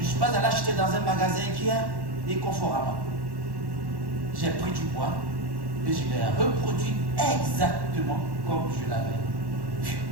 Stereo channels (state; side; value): late; left; 1.1 ms